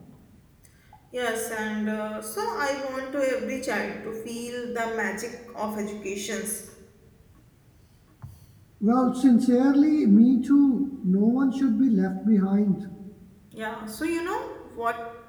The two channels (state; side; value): identical; both; correlation 1.00